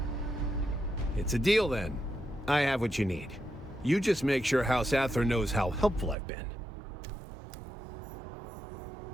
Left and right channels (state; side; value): drops out; left; at 6.2 s